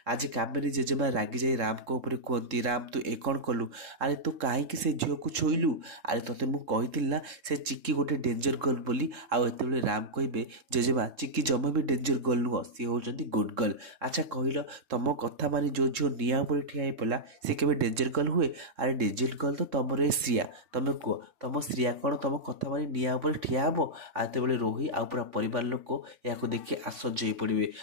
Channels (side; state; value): left; late; 3.7 ms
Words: आज कामिनी जेजेमा रागी जाई राम को ऊपर कहती राम तू ए कौन कलु अरे तू कहीं से झील को छुईलु अरे तोते मुझे ना से चिक्की गोटे डेंजर गर्ल बोली आते राम कहे जेजेमा चिक्की जमा भी डेंजर गर्ल नुह सी होती गुड गर्ल। अच्छा कहल तुम कथा मानी जो झील निआ उपर ठिया पड़ा सी के डेंजर गर्ल हुए अरे डेंजर गर्ल तो तुम ए श्रिया तुम कह तुम श्रिया कौन तुम कथा मानी निआ उपर ठिया हम आते रोही आ पूरा परिवार लोक या देखिए आश्चर्य हो पड़े